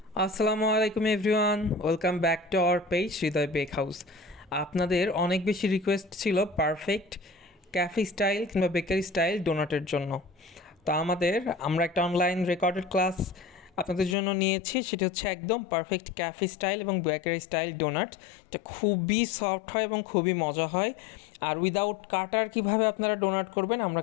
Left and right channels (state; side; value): drops out; right; at 14.2 s